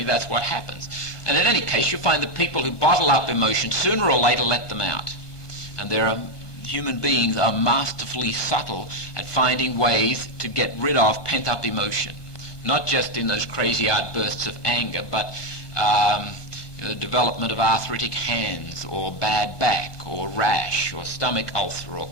that's what happens. And in any case, you find that people who bottle up emotion sooner or later let them out. And human beings are masterfully subtle at finding ways to get rid of pent-up emotion. Not just in those crazy outbursts of anger, but the development of arthritic hands, or bad back, or rash, or stomach ulcer, or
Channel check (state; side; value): late; right; 1.4 ms